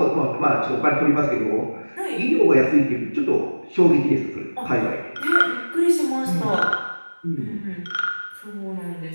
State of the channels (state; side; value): inverted; both; correlation -1.00